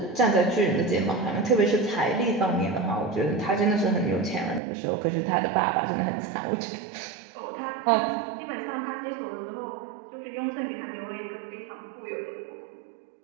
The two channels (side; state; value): left; drops out; at 4.6 s